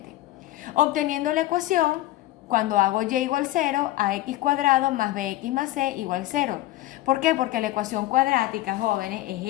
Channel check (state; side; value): quieter; right; 16.2 dB